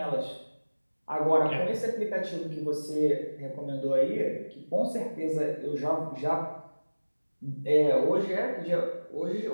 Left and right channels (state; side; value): inverted; both; correlation -1.00